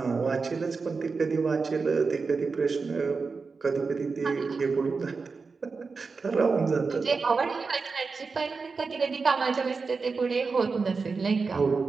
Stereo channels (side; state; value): left; quieter; 4.6 dB